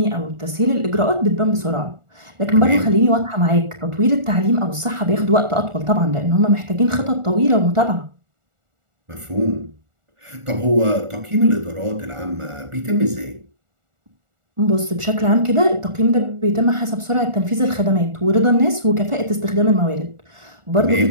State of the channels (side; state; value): left; late; 1.4 ms